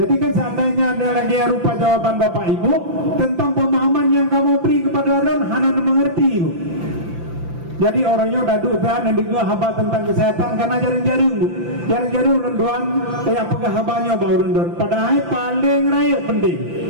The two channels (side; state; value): left; late; 5.9 ms